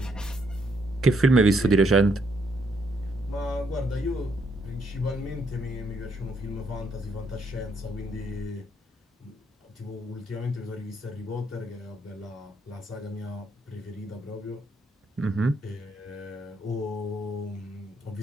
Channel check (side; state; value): both; normal; correlation 0.73